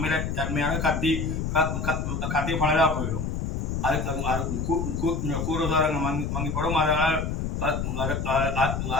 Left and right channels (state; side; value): noise; left; rumble, 2 dB below the sound